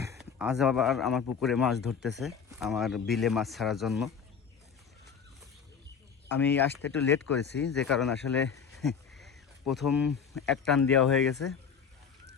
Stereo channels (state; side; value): quieter; right; 6.7 dB